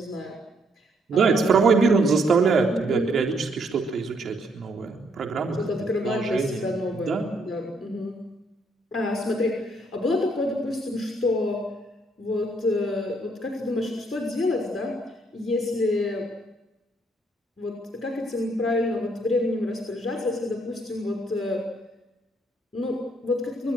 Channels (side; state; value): both; normal; correlation 0.70